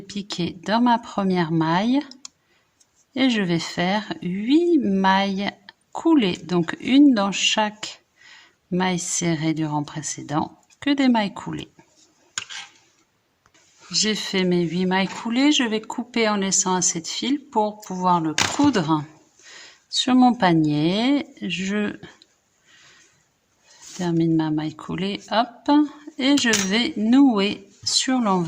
piquer dans ma première maille et je vais faire 8 mailles coulées. Donc une dans chaque maille serrée du rang précédent, que des mailles coulées. J'ai fait mes 8 mailles coulées, je vais couper en laissant assez de fil pour pouvoir le coudre sur mon panier. Je termine ma maille coulée, hop, et je vais nouer sur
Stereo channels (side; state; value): both; identical; correlation 1.00